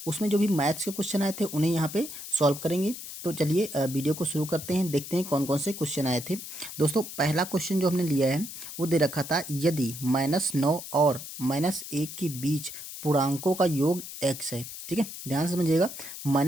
उसमें जो भी मैथ्स के क्वेश्चन आए थे उन्हें यहाँ पे सॉल्व करेंगे। तो चलिए वीडियो को शुरू करते हैं, देखते हैं कौन कौन से क्वेश्चन आए थे। दोस्तों पहला क्वेश्चन जो हमने लिया है वो दे रखा था, यदि -9 और -1 के बीच पूर्णांकों का योग x है। ठीक है, ध्यान से समझिएगा।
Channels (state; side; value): noise; left; hiss, 10 dB below the sound